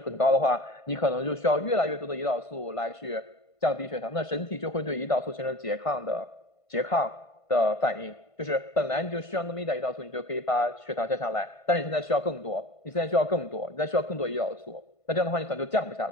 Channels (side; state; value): right; late; 1.5 ms